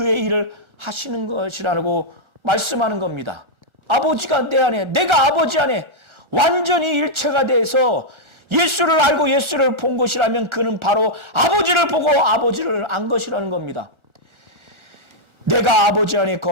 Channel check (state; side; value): late; left; 1.4 ms